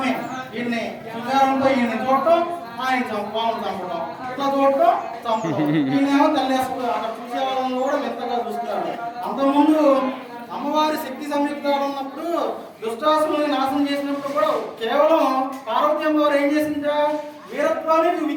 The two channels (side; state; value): both; identical; correlation 1.00